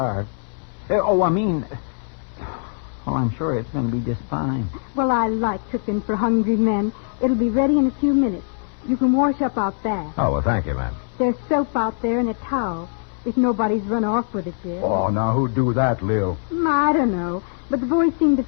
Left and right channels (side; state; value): right; silent; digital silence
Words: Well, I'm sure it's going to be just fine. Well, I like cooking for hungry men. It'll be ready in a few minutes. You can wash up out back. Oh, well, thank you, ma'am. There's soap out there and a towel, if nobody's run off with it yet. Oh, now who'd do that, Lil? I don't know, but the boys seem to